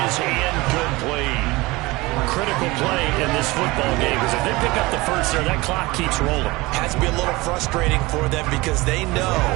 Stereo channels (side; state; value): left; quieter; 21.8 dB